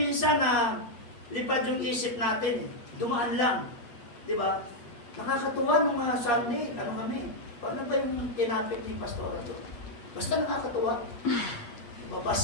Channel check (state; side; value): late; right; 8.5 ms